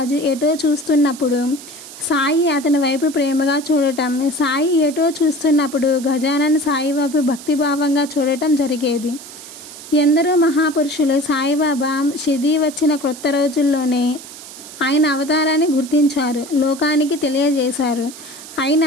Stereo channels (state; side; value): noise; right; hiss, 15 dB below the sound